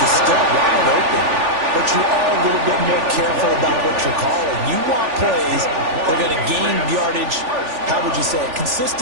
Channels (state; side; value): late; left; 3.4 ms